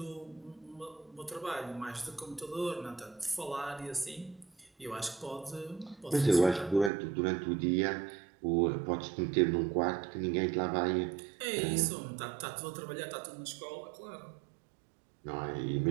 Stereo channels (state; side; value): drops out; left; at 6.9 s